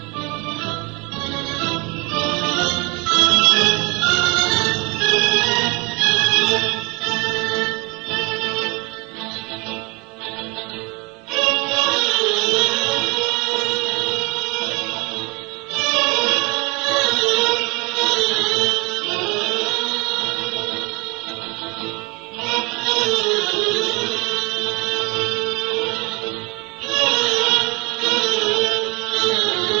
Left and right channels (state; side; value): quieter; left; 27.9 dB